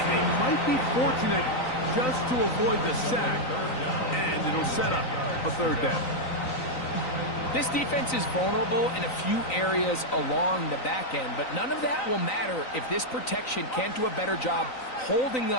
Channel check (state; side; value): late; right; 3.9 ms